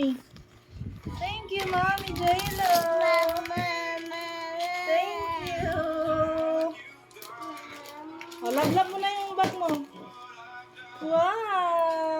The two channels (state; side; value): identical; both; correlation 1.00